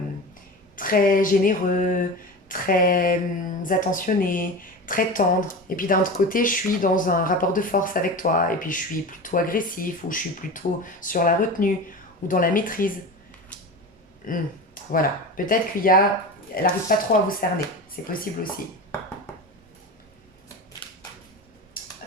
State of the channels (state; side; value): normal; both; correlation 0.29